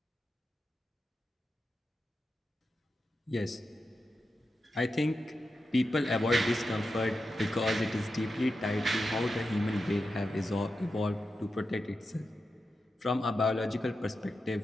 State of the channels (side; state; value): both; normal; correlation 0.90